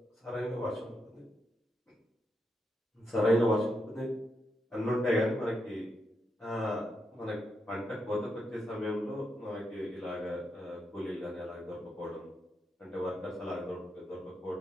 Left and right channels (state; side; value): normal; both; correlation 0.83